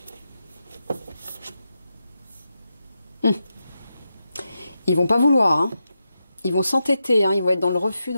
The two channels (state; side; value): inverted; both; correlation -0.88